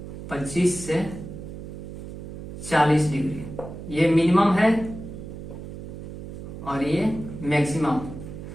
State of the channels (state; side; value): noise; right; hum, 10 dB below the sound